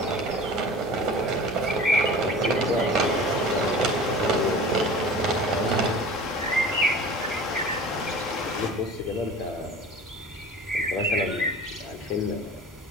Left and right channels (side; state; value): both; normal; correlation 0.40